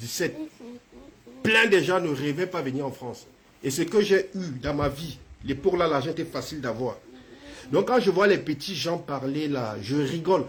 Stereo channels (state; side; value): identical; both; correlation 1.00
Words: Plein de gens ne rêvaient pas venir en France. Et ce que j'ai eu dans ma vie, L'époque là, l'argent était facile d'avoir. Donc quand je vois les petits gens parler là, je rigole.